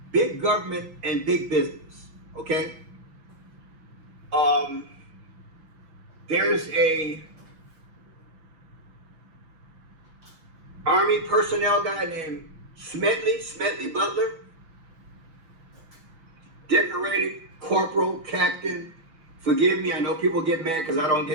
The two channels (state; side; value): late; left; 5.9 ms